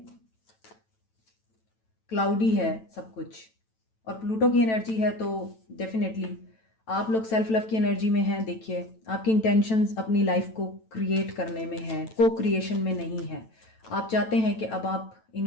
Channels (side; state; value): right; late; 9.1 ms